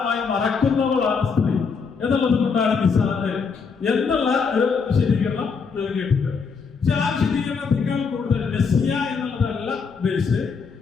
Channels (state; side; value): quieter; right; 5.4 dB